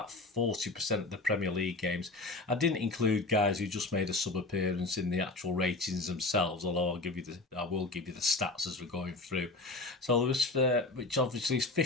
40% of the Premier League games. I didn't include guys who just made a sub-appearance in the actual ratings themselves, although I will give you the stats as we're going through. So there was, which obviously is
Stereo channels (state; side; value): quieter; right; 3.1 dB